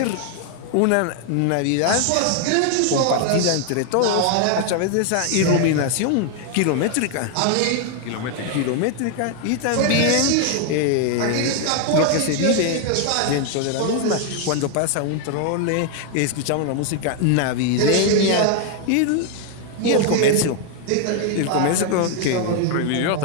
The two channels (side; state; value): both; different; correlation 0.00